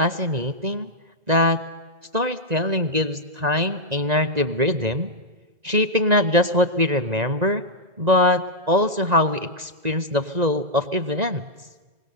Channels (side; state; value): left; late; 1.9 ms